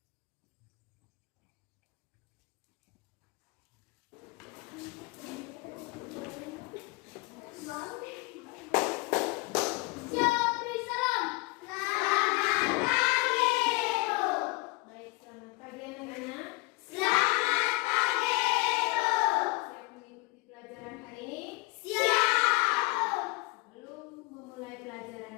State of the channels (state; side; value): quieter; right; 25.2 dB